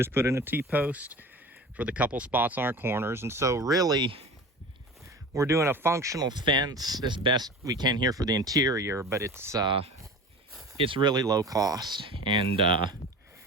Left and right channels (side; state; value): both; normal; correlation 0.36